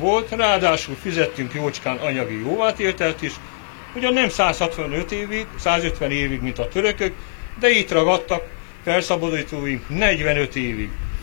ráadásul fizettünk jócskán anyagi jóvátételt is, ugyan nem 150 évig, mint a törökök, de itt ragadtak felszabadítóink 45 évig.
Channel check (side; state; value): right; silent; 65 dB below the other